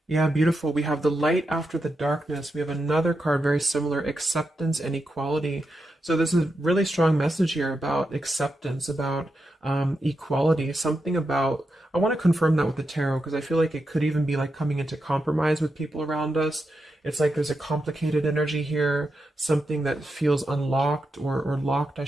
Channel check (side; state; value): both; normal; correlation 0.87